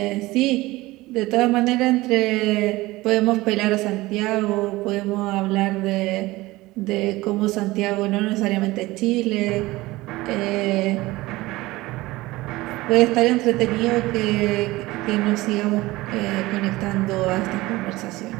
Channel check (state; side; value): quieter; left; 19.5 dB